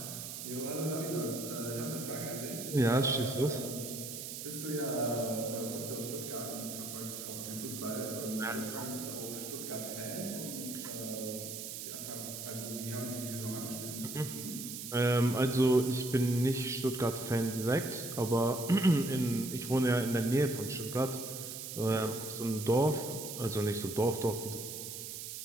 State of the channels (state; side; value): noise; right; hiss, 7 dB below the sound